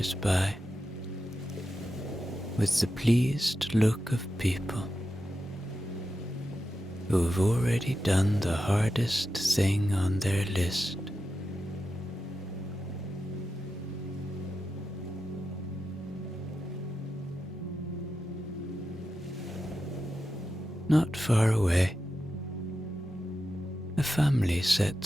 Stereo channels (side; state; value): both; normal; correlation 0.90